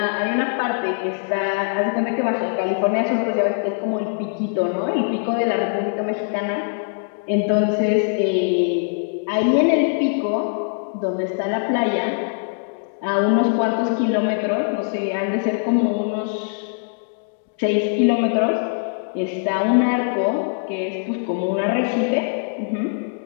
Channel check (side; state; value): right; silent; digital silence